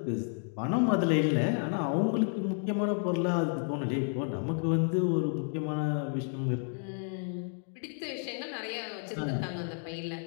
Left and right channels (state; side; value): silent; right; 57 dB below the other